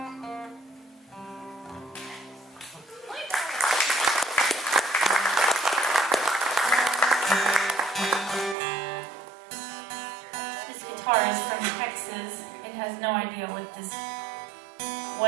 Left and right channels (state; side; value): drops out; left; at 8.6 s